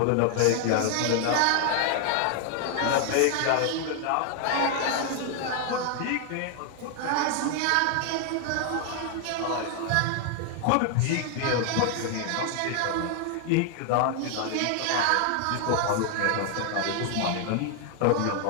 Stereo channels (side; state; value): both; different; correlation 0.00